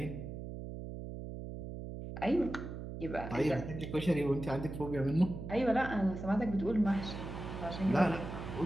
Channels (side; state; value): right; noise; hum, 8 dB below the sound